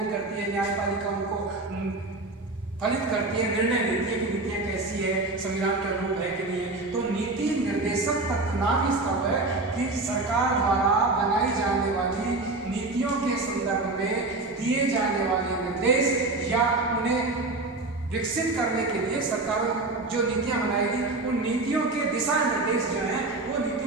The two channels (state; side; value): quieter; left; 3.1 dB